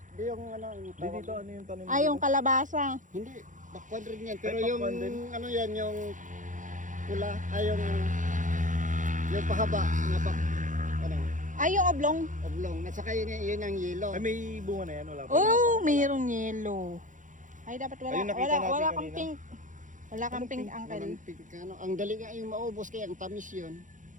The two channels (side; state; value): left; late; 0.37 ms